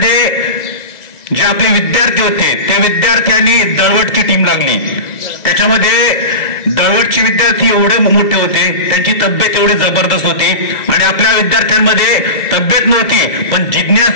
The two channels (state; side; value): late; right; 1.9 ms